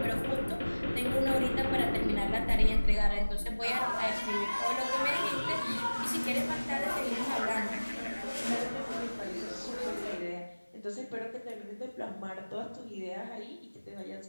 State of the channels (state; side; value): inverted; both; correlation -1.00